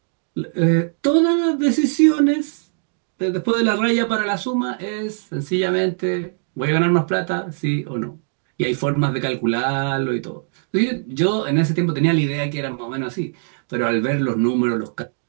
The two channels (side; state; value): left; silent; digital silence